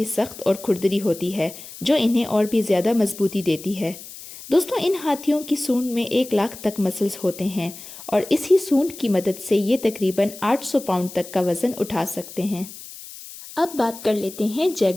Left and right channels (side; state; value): left; noise; hiss, 15 dB below the sound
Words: सख्त और खुरदरी होती है, जो इन्हें और भी ज़्यादा मजबूती देती है। दोस्तों, इन हाथियों की सूंड में 1 लाख तक मसल्स होते हैं और इसी सूंड की मदद से ये तकरीबन 800 पाउंड तक का वजन उठा सकते हैं। अब बात कर लेते हैं